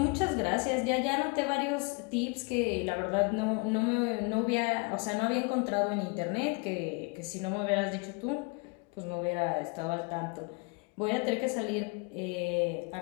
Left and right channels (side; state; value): right; quieter; 31.4 dB